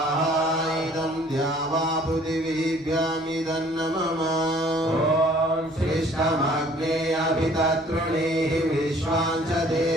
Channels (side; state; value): both; normal; correlation 0.56